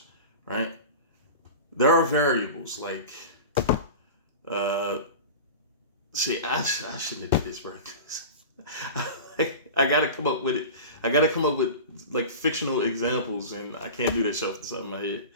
right? There are variables like uh see I shouldn't have did this right. I gotta come up with it. I gotta come up with like fictional examples, and I can't do that shit off the side of my head.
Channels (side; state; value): both; inverted; correlation -0.31